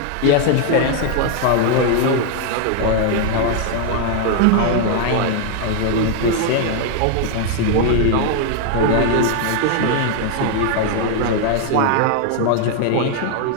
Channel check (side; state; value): both; different; correlation 0.00